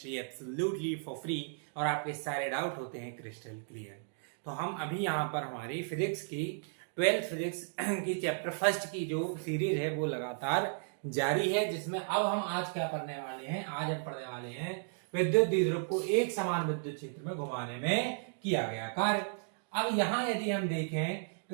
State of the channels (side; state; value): left; silent; digital silence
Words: absolutely for free और आपके सारे डाउट होते हैं क्रिस्टल क्लियर। तो हम अभी यहां पर हमारी फिजिक्स की 12th फिजिक्स की चैप्टर फर्स्ट की जो सीरीज है वो लगातार जारी है, जिसमें अब हम आज क्या पढ़ने वाले हैं। आज हम पढ़ने वाले हैं विद्युत द्विध्रुव को एक समान विद्युत क्षेत्र में घुमाने में किया गया कार्य। अब यहाँ यदि हम देखें